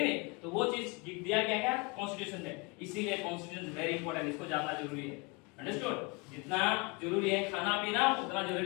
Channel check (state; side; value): quieter; right; 29.1 dB